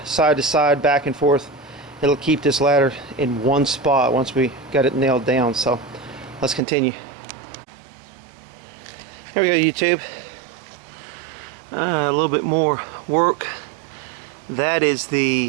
side to side, back and forth. It'll keep this ladder in one spot once we got it nailed down. So let's continue. Here we go, YouTube. A little bit more work. That is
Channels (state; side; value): drops out; left; at 6.6 s